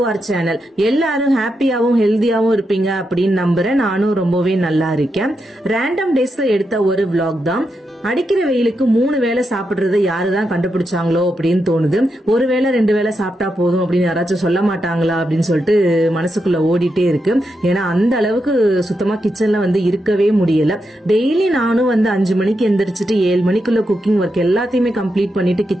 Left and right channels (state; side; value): normal; both; correlation 0.85